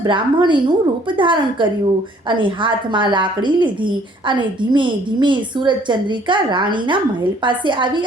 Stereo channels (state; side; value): normal; both; correlation 0.60